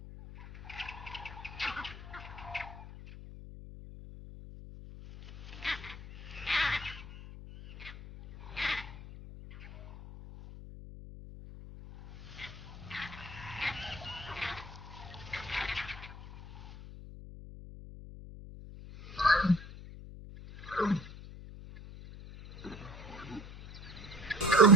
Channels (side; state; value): left; noise; hum, 13 dB below the sound